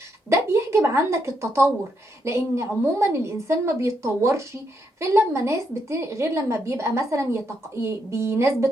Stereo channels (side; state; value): both; normal; correlation 0.78